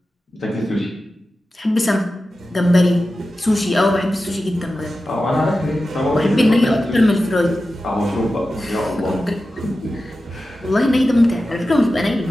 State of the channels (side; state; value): both; normal; correlation 0.93